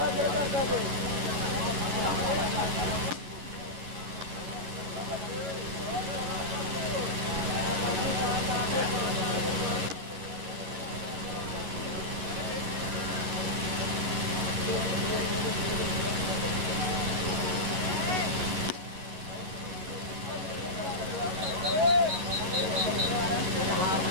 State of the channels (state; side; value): late; left; 11 ms